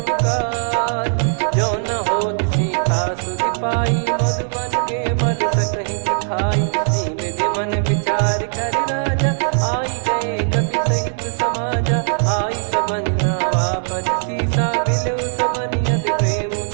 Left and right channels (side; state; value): left; silent; 66 dB below the other